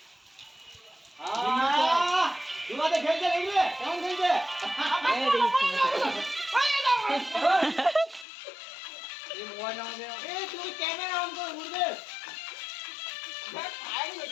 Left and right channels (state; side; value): drops out; right; at 8.2 s